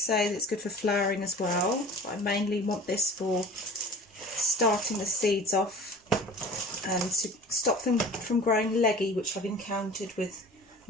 that it's good for flowering as well, but I mainly want this for starting the seeds off and to stop them from growing leggy, which I've encountered with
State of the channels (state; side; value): normal; both; correlation 0.42